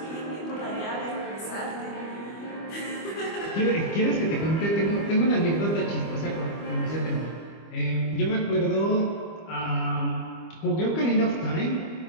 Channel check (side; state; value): right; late; 25 ms